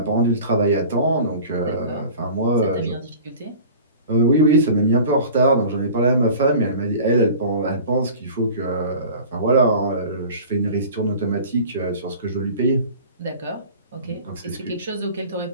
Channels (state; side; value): inverted; both; correlation -0.41